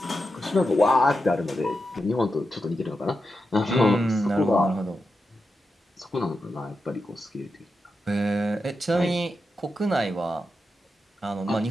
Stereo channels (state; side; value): normal; both; correlation 0.88